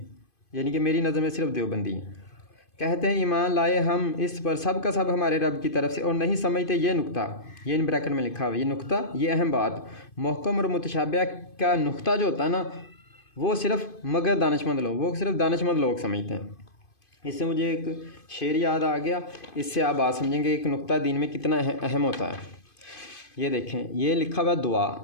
यानी कि मेरी नज़र में सिर्फ देवबंदी हैं, कहते हैं ईमान लाए हम इस पर सब का सब हमारे रब की तरफ से, और नहीं समझते ये नुक्ता, ये इन ब्रैकेट में लिखा हुआ है, ये नुक्ता, ये अहम बात। महकम और मुतशाबिहा का नुक्ता जो होता है ना, वो सिर्फ मगर दानिशमंद लोग, वो सिर्फ दानिशमंद लोग समझते हैं। इससे मुझे एक शेर याद आ गया, इससे आप बात समझेंगे एक नुक्ता दीन में कितना अहम होता है। ये देखें, ये लिखा हुआ दुआ,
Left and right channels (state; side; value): late; right; 2.5 ms